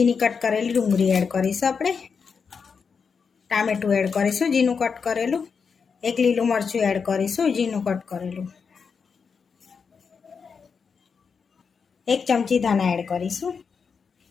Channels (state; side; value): quieter; right; 5.8 dB